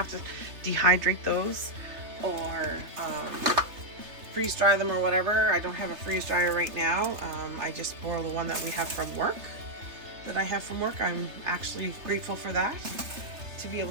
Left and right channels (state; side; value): late; left; 3.3 ms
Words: to dehydrate those or freeze dry them or whatever. I don't have a freeze dryer right now. I just borrow the one that we have from work, I'm actually grateful for that, to be